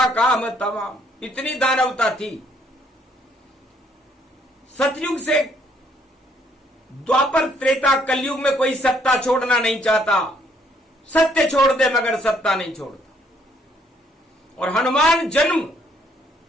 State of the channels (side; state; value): both; normal; correlation 0.67